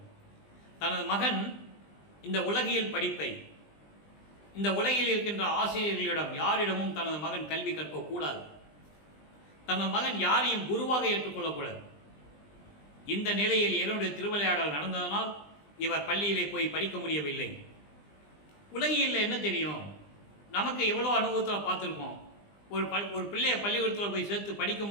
தனது மகன் இந்த உலகியல் படிப்பை, இந்த உலகில் இருக்கின்ற ஆசிரியர்களிடம் யாரிடமும் தனது மகன் கல்வி கற்கக்கூடாது. தனது மகன் யாரையும் குருவாக ஏற்றுக்கொள்ளக்கூடாது. இந்த நிலையில் இறைவனுடைய திருவிளையாடல் நடந்ததனால் இவர் பள்ளியிலே போய் படிக்க முடியவில்லை. உலகியலில் என்ன தெரியும்? நமக்கு எவ்வளோ அனுபவத்தில் பார்த்துருக்கோம். ஒரு பிள்ளையை பள்ளிக்கூடத்தில் போய் சேர்த்து படிக்க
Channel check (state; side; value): late; right; 20 ms